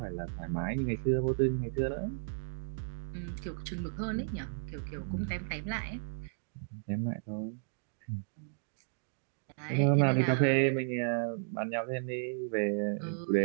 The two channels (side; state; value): left; silent; digital silence